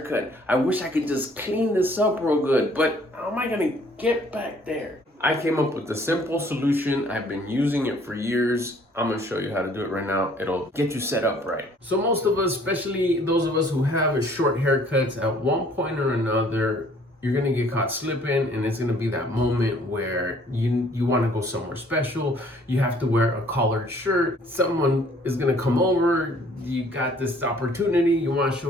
I wish I could just clean this up real good, but how am I gonna get back there? I came up with a simple solution. I've been using it for years. I'm gonna show you how to do it right now. It'll get you set up right. So most of us, especially those of us who have short haircuts, at one point or another, you're gonna get caught slipping, and it's gonna be that moment where you wanna go somewhere special. You have to wear a collared shirt. Someone is gonna come over. You got this opportunity, you wanna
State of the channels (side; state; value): both; normal; correlation 0.58